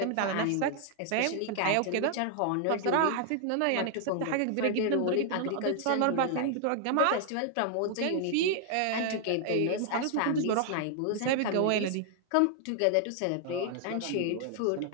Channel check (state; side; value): different; both; correlation 0.00